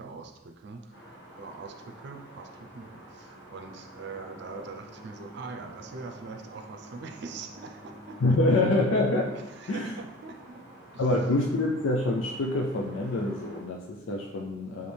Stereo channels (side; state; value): both; normal; correlation 0.39